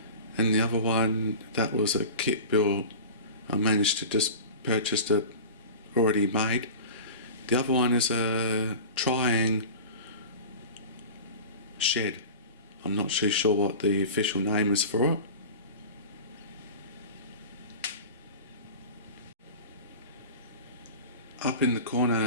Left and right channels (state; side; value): inverted; both; correlation -0.34